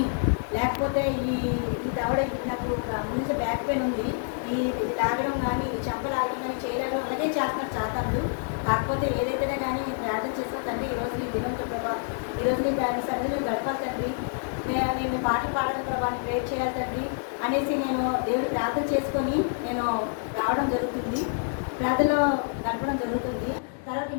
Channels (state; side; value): silent; right; 59 dB below the other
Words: లేకపోతే ఈ దవడ నాకు ముందు బ్యాక్ పెయిన్ ఉంది, ఈ లాగడం కానీ చెంప లాగడం కానీ చేయడం అలాగే చేస్తున్నారు చాతాలు. కాకపోతే ఏదైతేనే కానీ ప్రార్థన చేస్తుందండి ఈరోజు నీ దినంతో ప్రభావం, ఈరోజు నీ సరిగ్గా గడపాలండి, నేను పాటలు పాడడం ప్రభావాన్ని ప్రేర్ చేయాలి తండ్రి అనేసి నేను దేవుడు ప్రార్థన చేసుకొని నేను రావడం జరుగుతుంది, ప్రార్థనలో గడపడం జరుగుతుంది. తర్వాత